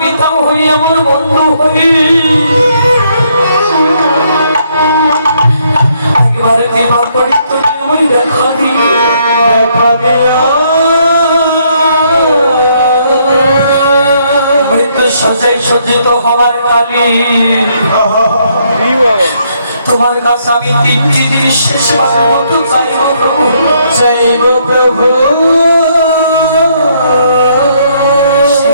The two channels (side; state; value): both; inverted; correlation -0.71